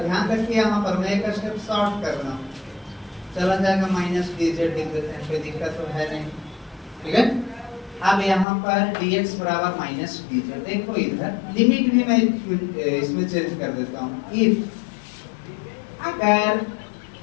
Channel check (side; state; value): right; drops out; at 8.5 s